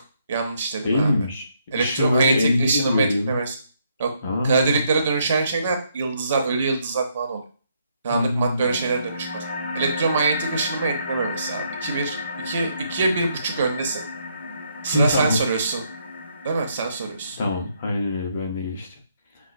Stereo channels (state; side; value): inverted; both; correlation -0.73